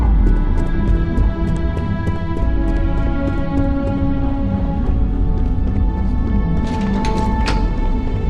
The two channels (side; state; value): both; identical; correlation 1.00